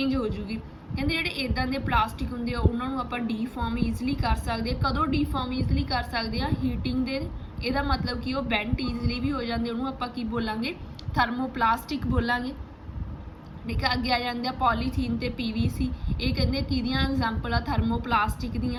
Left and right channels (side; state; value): both; identical; correlation 1.00